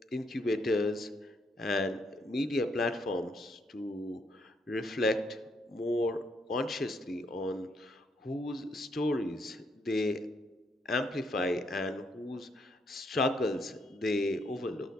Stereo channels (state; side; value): normal; both; correlation 0.74